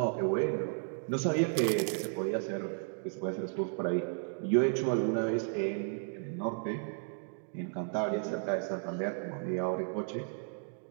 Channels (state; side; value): silent; left; 55 dB below the other